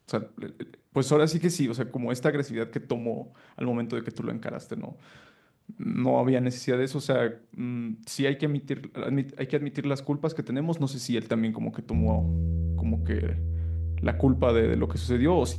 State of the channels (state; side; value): identical; both; correlation 1.00